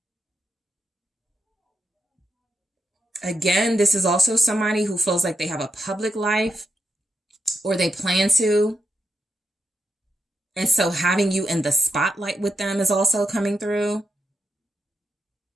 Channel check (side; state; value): both; normal; correlation 0.83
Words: Again, this is also somebody who feels like they have a public life or they plan to. And so having you in the spotlight with them is also coming through.